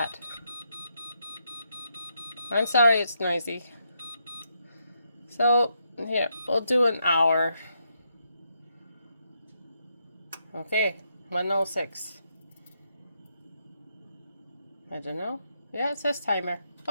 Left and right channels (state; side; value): inverted; both; correlation -0.79